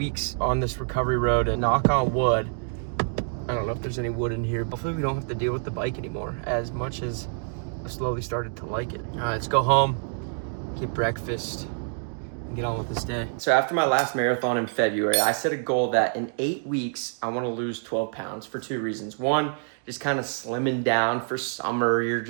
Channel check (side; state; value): left; silent; 60 dB below the other